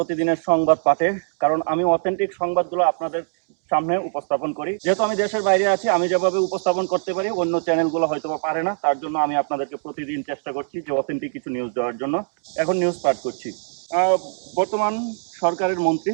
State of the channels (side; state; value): left; silent; digital silence